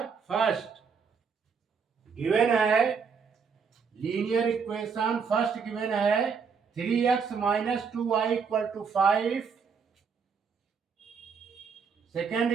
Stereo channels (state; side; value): quieter; left; 5.9 dB